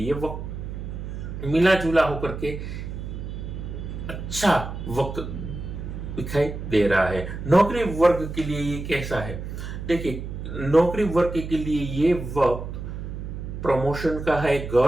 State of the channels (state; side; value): noise; right; hum, 7 dB below the sound